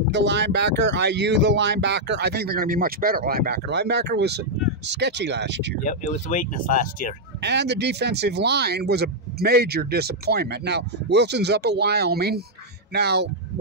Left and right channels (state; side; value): normal; both; correlation -0.04